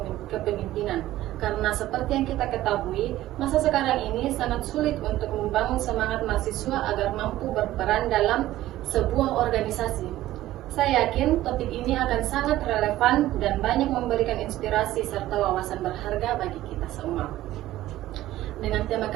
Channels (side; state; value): left; quieter; 15.0 dB